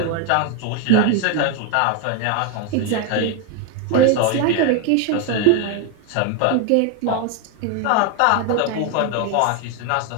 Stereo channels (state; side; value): different; both; correlation 0.01